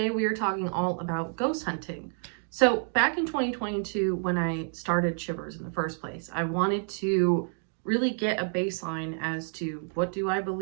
we are talking all about ghost hunting. So back in 2022, when I started Shivers in the first place, I wanted to really get a baseline as to what do I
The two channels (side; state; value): left; silent; 56 dB below the other